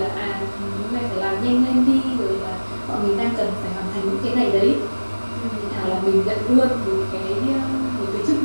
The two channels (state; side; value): inverted; both; correlation -1.00